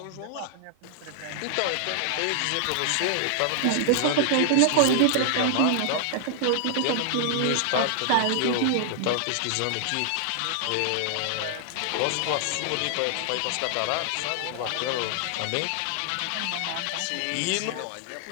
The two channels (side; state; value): both; different; correlation 0.00